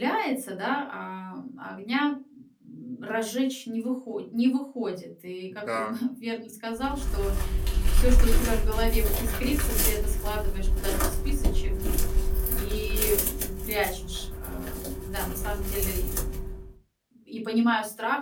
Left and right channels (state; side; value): identical; both; correlation 1.00